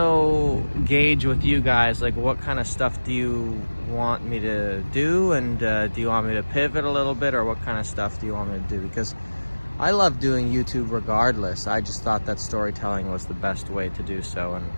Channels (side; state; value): both; inverted; correlation -1.00